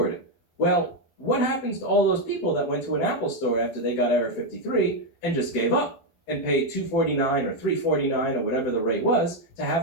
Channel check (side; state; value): right; late; 12 ms